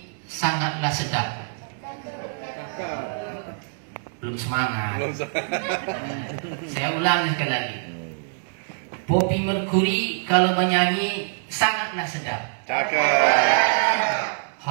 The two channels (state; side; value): silent; left; digital silence